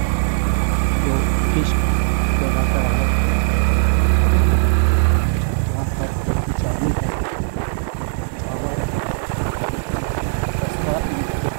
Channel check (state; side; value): silent; left; 57 dB below the other